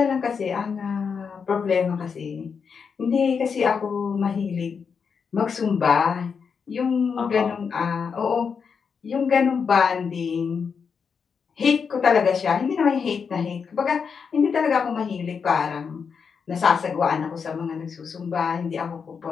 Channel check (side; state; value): right; quieter; 6.1 dB